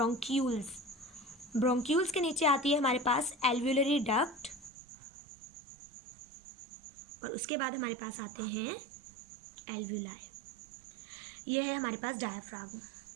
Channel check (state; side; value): drops out; left; at 4.7 s